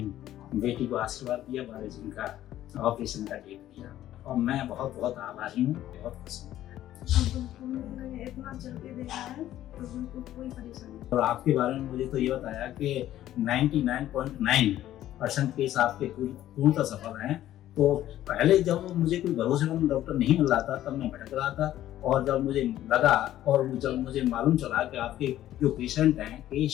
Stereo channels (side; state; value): right; quieter; 13.0 dB